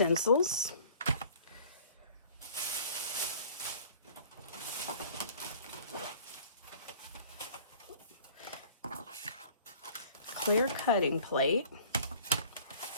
Clear cutting plate,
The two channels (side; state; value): both; inverted; correlation -0.50